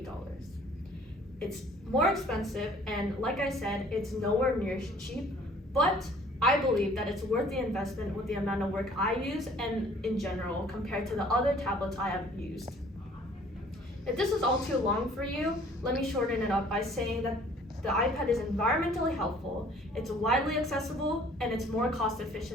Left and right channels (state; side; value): normal; both; correlation 0.55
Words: It's more expensive, and like I said, it's nowhere near cheap, but I believe that it's worth the investment with the amount of work I use and in general compared to the other tablets I have used. If this is all too long for you, let me shorten it up by saying that the iPad is environmentally helpful, it's widely accessible, and it's more cost